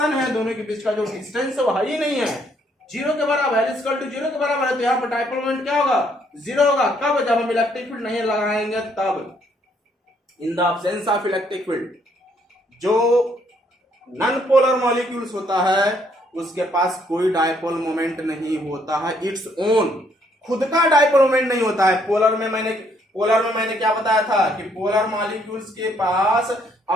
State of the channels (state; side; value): normal; both; correlation 0.69